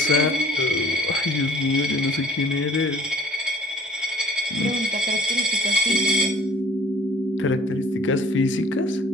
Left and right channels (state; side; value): normal; both; correlation 0.52